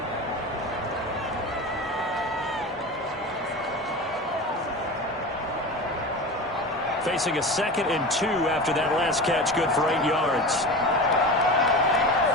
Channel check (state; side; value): normal; both; correlation 0.29